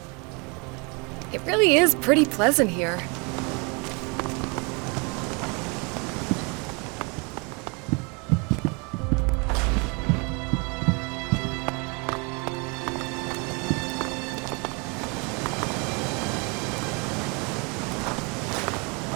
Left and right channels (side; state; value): left; quieter; 31.3 dB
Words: It really is pretty pleasant here.